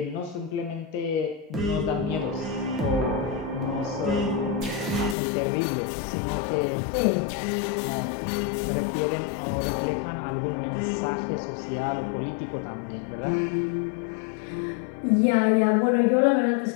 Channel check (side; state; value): right; drops out; at 5.2 s